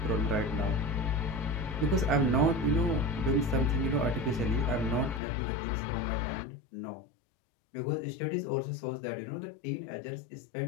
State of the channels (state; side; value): drops out; right; at 5.2 s